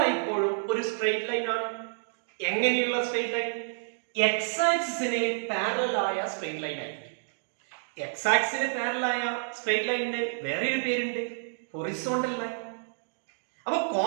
ഒരു സ്ട്രെയിറ്റ് ലൈൻ ആണ്. എങ്ങനെയുള്ള സ്ട്രെയിറ്റ് ലൈൻ? എക്സ് ആക്സിസിന് പാരലൽ ആയ സ്ട്രെയിറ്റ് ലൈൻ ആയിരിക്കും. എക്സ് ആക്സിസിന് പാരലൽ ആയ സ്ട്രെയിറ്റ് ലൈനിന് വേറൊരു പേരുണ്ട്, ഹൊറിസോണ്ടൽ ലൈൻ. അപ്പൊ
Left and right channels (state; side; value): silent; left; digital silence